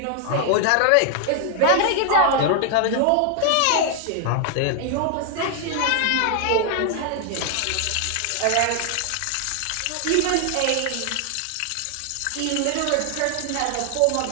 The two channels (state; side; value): different; both; correlation 0.00